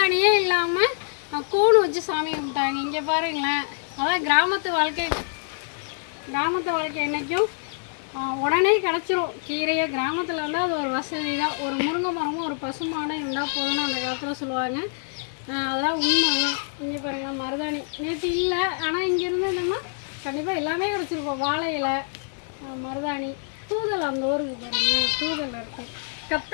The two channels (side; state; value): right; silent; digital silence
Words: இல்லாமல் கூணு வச்சு சாமி கும்பிட்டாங்க. இங்கே பாருங்களேன், அதான் கிராமத்து வாழ்க்கை என்றைக்கும் உடனே கிடச்சிரும். கீரையை கிராமத்தில் இருந்தால் அது ஒரு வசதி தான். ஒரு முருங்கை மரமும் ஒரு பசுமாடும் இருந்தால் போதும்னு அந்த காலத்தில் சொல்லுவாங்க. அதெல்லாம் உண்மை தான். இங்கே பாருங்களேன், மருதாணி நேற்று இல்லை, ஆனால் இங்கே இருந்ததுன்னா கண்டிப்பாக எல்லாமே கிடச்சிருக்கோம். வாழை இலை, மருதாணி, தூதல் அந்த ஊருக்கு பாருங்கள், தூதல் இருக்குது.